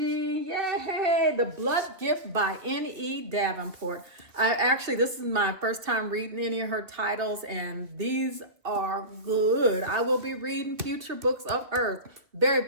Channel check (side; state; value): left; late; 2.3 ms